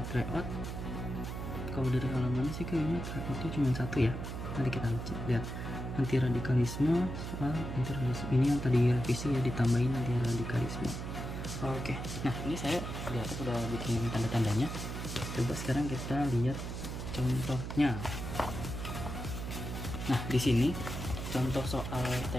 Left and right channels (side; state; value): right; noise; hum, 6 dB below the sound